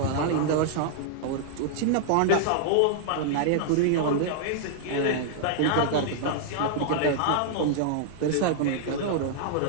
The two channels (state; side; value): different; both; correlation -0.01